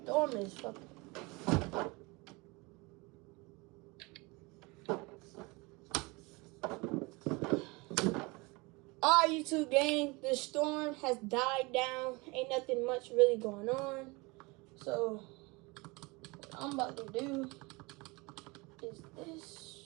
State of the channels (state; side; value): quieter; left; 25.7 dB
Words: storm is fucking. Alright, YouTube gang, the storm has died down. Ain't nothing much really going on. So, what I'm about to do is